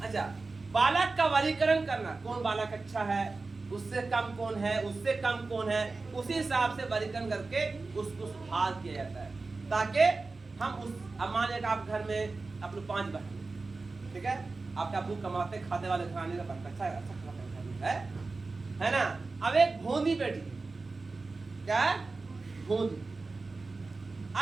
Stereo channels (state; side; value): quieter; left; 3.8 dB